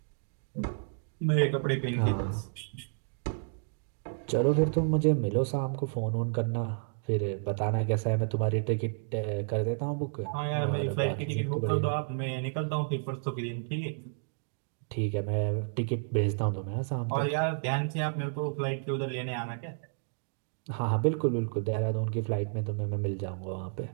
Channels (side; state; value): left; silent; digital silence